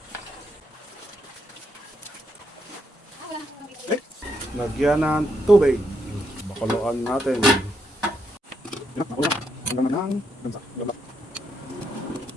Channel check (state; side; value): normal; both; correlation 0.78